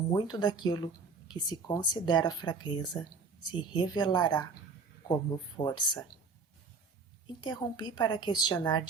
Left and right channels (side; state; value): left; quieter; 4.6 dB